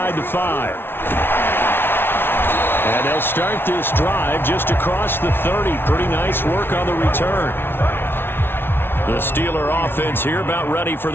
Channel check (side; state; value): right; late; 0.11 ms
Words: the 5. And they'll start this drive just across the 30. Pretty nice work on the return. The Steeler offense here about ready for